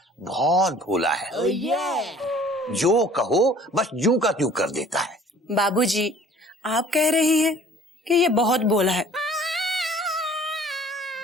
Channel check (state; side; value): normal; both; correlation 0.51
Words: बहुत भोला है। जो कहो बस यूं का त्यों कर देता है। बाबूजी आप कह रही हैं, कि ये बहुत बोला है।